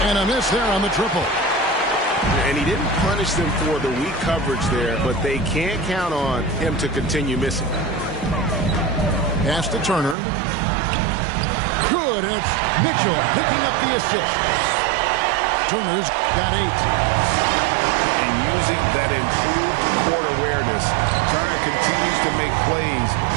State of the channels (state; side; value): drops out; left; at 10.2 s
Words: And a miss there on the triple. And he didn't punish them for the weak coverage there, but they can't count on him to continue missing. Pass to Turner. Good, and it's Mitchell picking up the assist. Turner's got 8. And using that improved court awareness, Turner continues to make plays